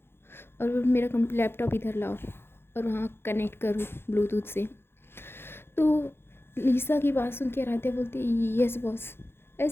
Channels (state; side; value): late; right; 0.11 ms